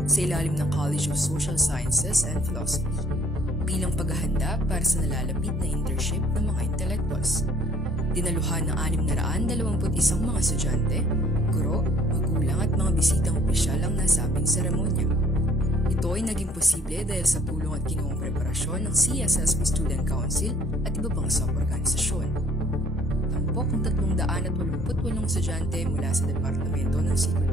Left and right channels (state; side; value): normal; both; correlation 0.57